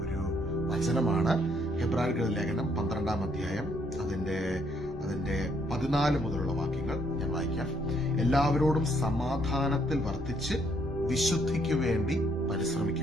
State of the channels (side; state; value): both; normal; correlation 0.70